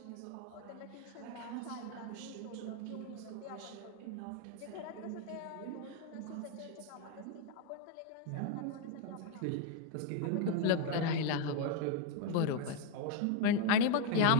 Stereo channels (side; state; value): both; different; correlation 0.01